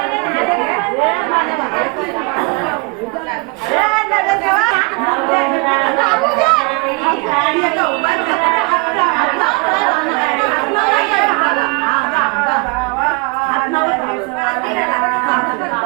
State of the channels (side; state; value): left; quieter; 30.8 dB